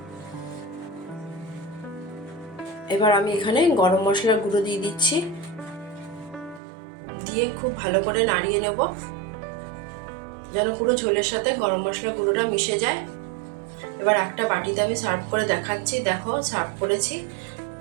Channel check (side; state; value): left; drops out; at 6.6 s